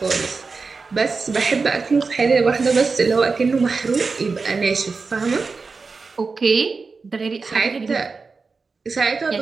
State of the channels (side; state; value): left; quieter; 4.5 dB